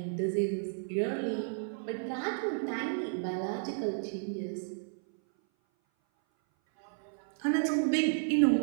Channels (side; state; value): left; silent; 56 dB below the other